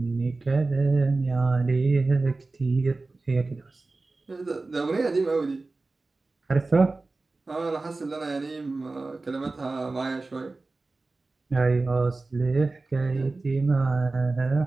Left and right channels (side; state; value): left; quieter; 3.4 dB